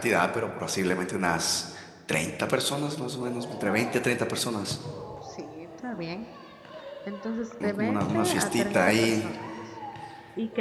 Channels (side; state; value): both; identical; correlation 1.00